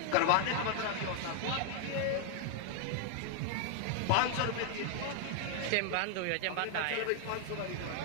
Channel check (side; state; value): both; different; correlation 0.00